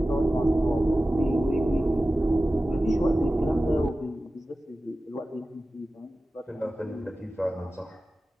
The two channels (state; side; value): normal; both; correlation 0.95